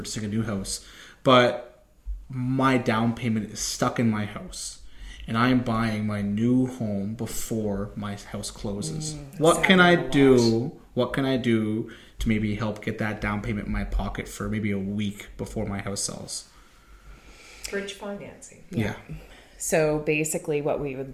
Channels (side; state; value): both; identical; correlation 1.00